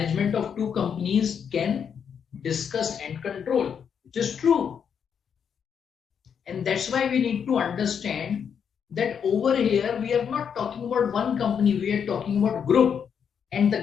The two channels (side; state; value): right; quieter; 7.4 dB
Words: of two companies can discuss and control, which is true. And that's why we need to understand that over here we are not talking about one company, we are talking about group, and